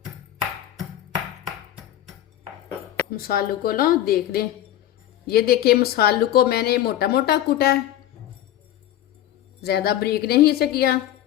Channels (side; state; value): right; quieter; 12.5 dB